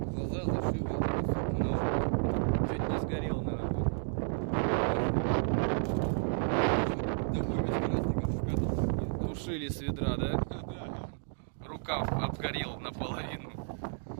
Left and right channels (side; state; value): left; silent; digital silence